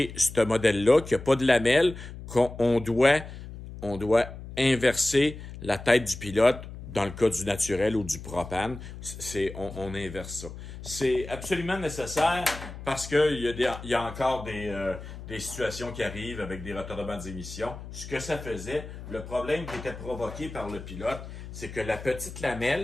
ce modèle-là, qui n'a pas de lamelles, qu'on doit inverser la tête du pilote dans le cas du naturel ou du propane. On inverse ça. C'est absolument nécessaire parce qu'il y a encore des situations qui arrivent avec des retardements d'émission. Ce que ça faisait, le problème qui était provoqué par le pilote, c'est que la petite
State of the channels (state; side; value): noise; left; hum, 12 dB below the sound